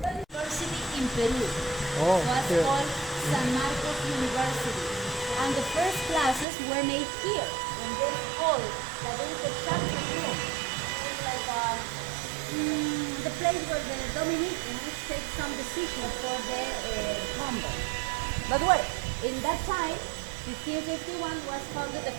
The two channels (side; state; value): left; drops out; at 6.5 s